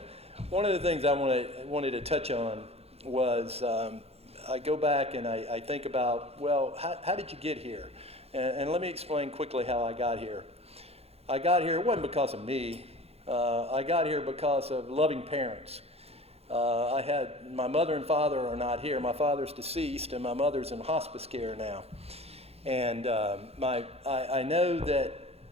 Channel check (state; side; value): late; left; 0.29 ms